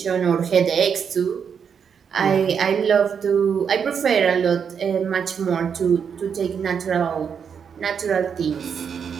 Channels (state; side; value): quieter; left; 7.0 dB